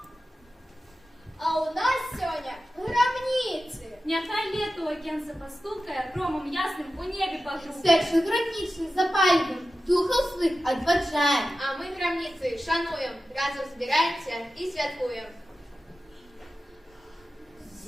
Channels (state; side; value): normal; both; correlation 0.93